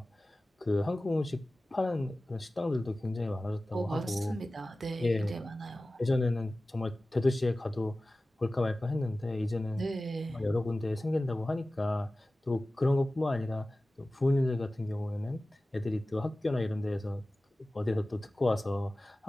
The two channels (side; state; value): both; normal; correlation 0.96